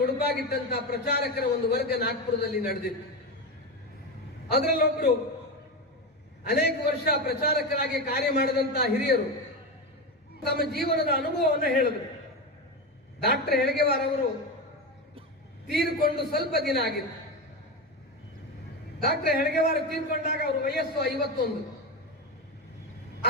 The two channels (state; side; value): normal; both; correlation 0.17